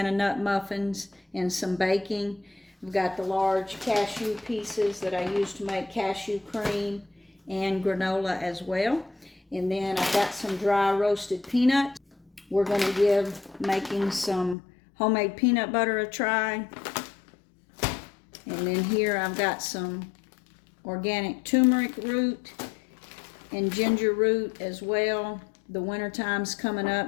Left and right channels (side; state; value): right; drops out; at 14.6 s